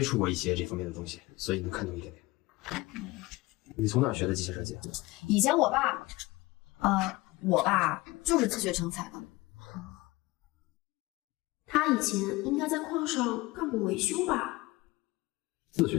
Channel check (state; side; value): quieter; right; 21.6 dB